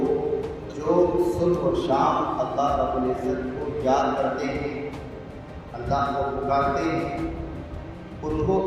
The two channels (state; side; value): identical; both; correlation 1.00